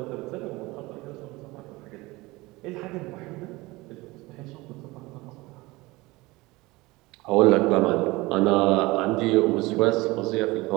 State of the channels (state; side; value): quieter; left; 21.6 dB